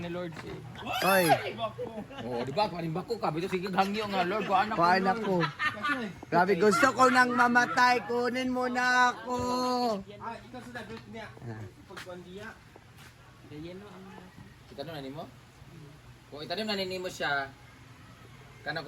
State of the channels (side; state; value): both; identical; correlation 1.00